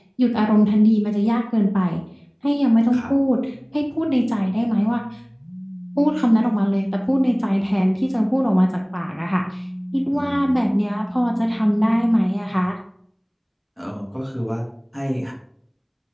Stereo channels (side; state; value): both; identical; correlation 1.00